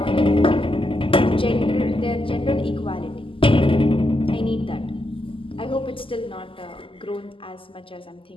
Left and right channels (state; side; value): late; right; 0.25 ms